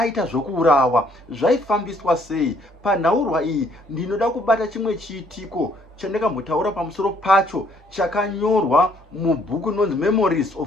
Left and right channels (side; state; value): both; normal; correlation 0.64